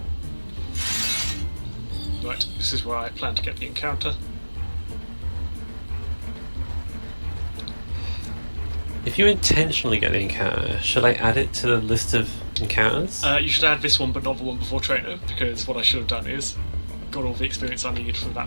Right, this is where I plan to get the encounter. If you intentionally get the encounter, should I add it to the list of encounters? You should add this one, but not the one before Trainer, because what I should have done is got all the experience I needed from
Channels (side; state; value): both; inverted; correlation -1.00